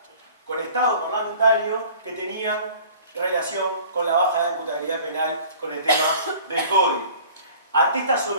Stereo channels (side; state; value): both; inverted; correlation -0.48